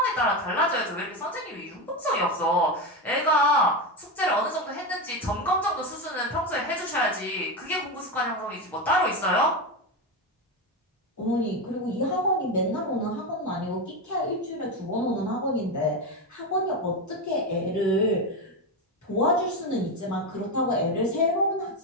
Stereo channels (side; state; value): both; normal; correlation 0.14